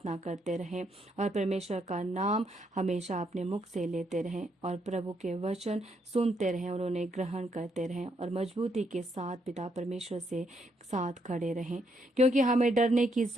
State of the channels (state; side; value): normal; both; correlation 0.75